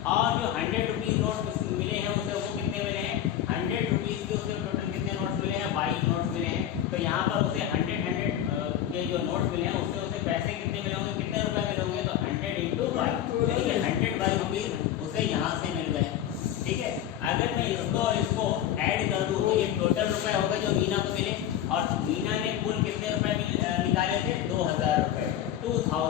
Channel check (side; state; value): right; quieter; 11.0 dB